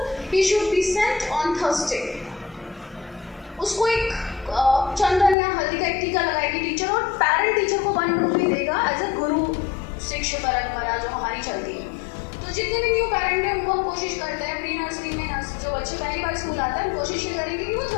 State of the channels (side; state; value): right; drops out; at 5.4 s